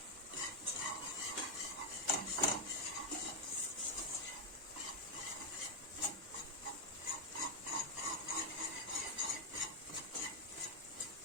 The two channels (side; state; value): both; normal; correlation -0.01